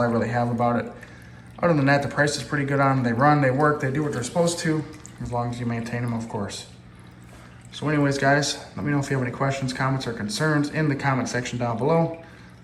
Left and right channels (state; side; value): identical; both; correlation 1.00